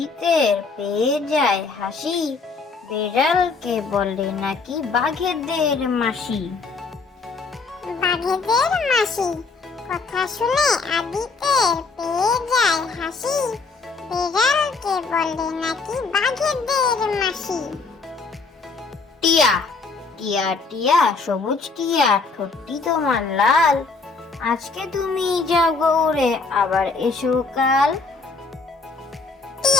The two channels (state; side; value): quieter; right; 4.3 dB